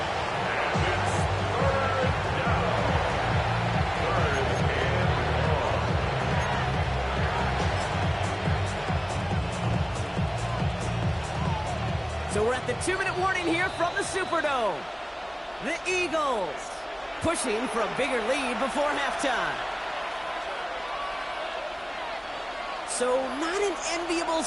So we're at the 2-minute warning here from the Superdome. The Eagles pushing for a bigger lead before halftime. So not an enviable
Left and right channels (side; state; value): both; identical; correlation 1.00